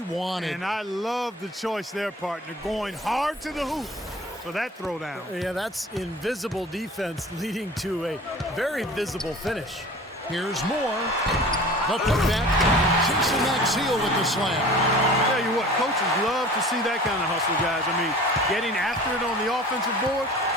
wanted. And I love the choice there, partner, going hard to the hoop for that throwdown. Yeah, that's invisible defense leading to a very visible finish. Here's Moore. The putback. Jason Maxiel with the slam. I tell you what, coaches love to see that kind of hustle, guys. I mean, getting after it on the offensive board,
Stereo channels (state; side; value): normal; both; correlation 0.42